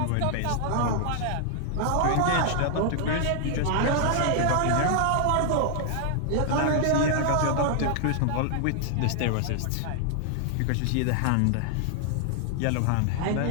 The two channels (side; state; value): both; different; correlation 0.00